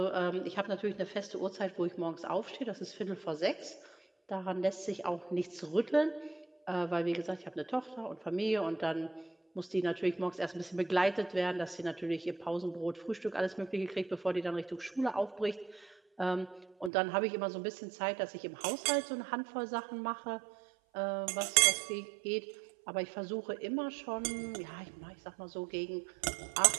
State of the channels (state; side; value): drops out; left; at 16.9 s